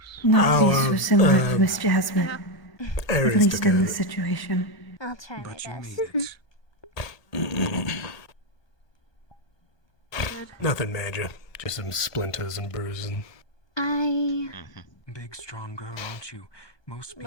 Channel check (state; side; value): late; right; 1.2 ms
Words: not be so similar to Miss Jasmine, at Aries least took in a- this situation. I'll try my best. Nothing major. Just some splinters and bruising. I Big, strong girl, aren't you? Most